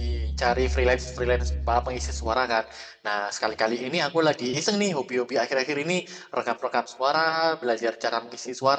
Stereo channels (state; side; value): identical; both; correlation 1.00